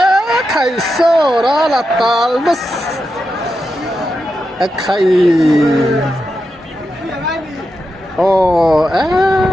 khai so rala tal bas khai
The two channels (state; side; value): normal; both; correlation 0.88